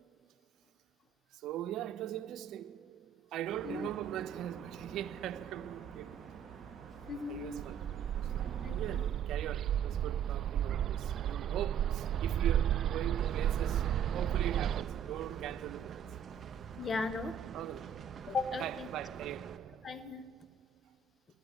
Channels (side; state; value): left; quieter; 7.6 dB